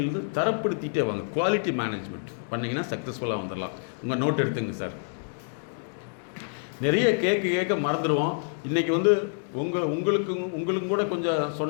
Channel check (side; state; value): right; silent; digital silence